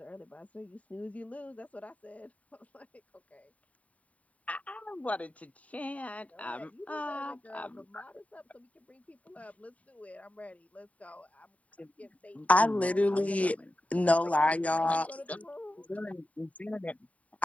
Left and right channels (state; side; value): late; right; 0.068 ms